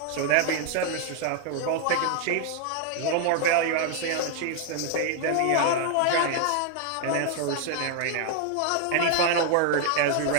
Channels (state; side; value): different; both; correlation 0.00